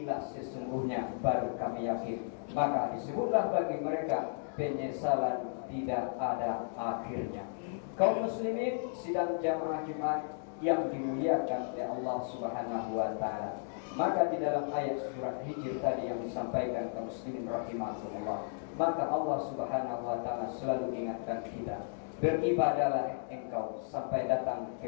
sesungguhnya baru kami yakin. Maka disebutlah bagi mereka penyesalan tidak ada akhirnya. Kaum muslimin sidang jamaah Jumat yang dimuliakan oleh Allah Subhanahu wa taala. Maka di dalam ayat surat Hijr tadi yang disampaikan kaum muslimin rahimahumullah, maka Allah Subhanahu wa taala selalu ingatkan kita, beribadahlah engkau sampai datang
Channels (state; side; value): silent; right; digital silence